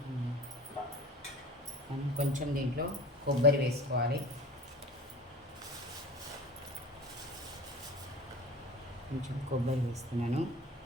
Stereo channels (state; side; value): normal; both; correlation 0.38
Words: మనం కొంచెం దీంట్లో కొబ్బరి వేసుకోవాలి. కొంచెం కొబ్బరి వేస్తున్నాను